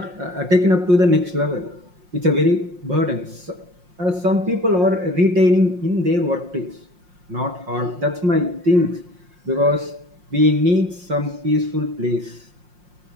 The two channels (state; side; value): late; left; 5.6 ms